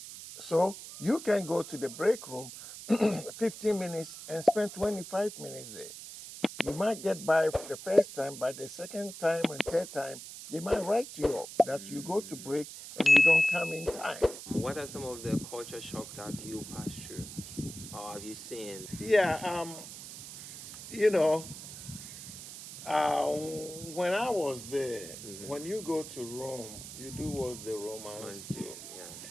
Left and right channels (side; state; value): right; noise; hiss, 12 dB below the sound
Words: So you can go to the break room 15 minutes and spend 25 minutes there. You might get by the first time, but the second time and third time, they might write you up that you go to break and you don't come in time. What are some of the culture shock that you passed through or have you seen? Yeah, you know, when I was there, when you go to Rome, you do what the Romans Want to, do. yeah.